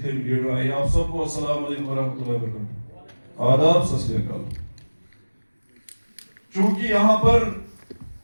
भी लीडर आए, आप सबको अस्सलाम वालेकुम वरहमतुल्लाहि वबरकातुहू, आदाब, सत श्री अकाल। चूंकि यहाँ पर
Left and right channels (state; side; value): inverted; both; correlation -1.00